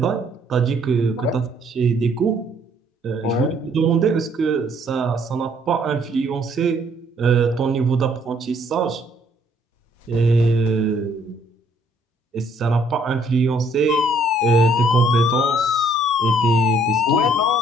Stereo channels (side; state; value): both; normal; correlation 0.64